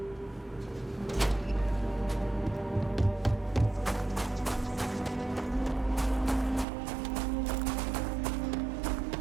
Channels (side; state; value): left; drops out; at 6.7 s